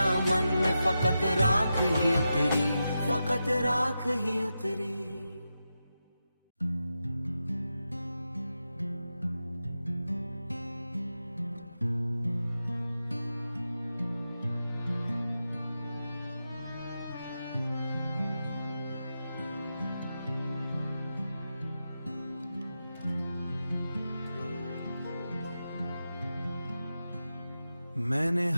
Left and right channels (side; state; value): both; inverted; correlation -0.90